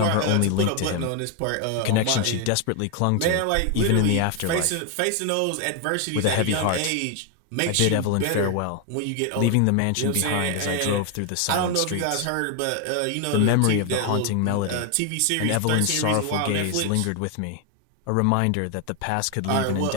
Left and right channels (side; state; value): both; different; correlation 0.01